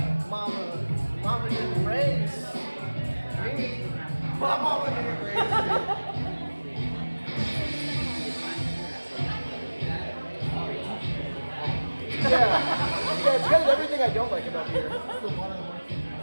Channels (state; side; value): inverted; both; correlation -1.00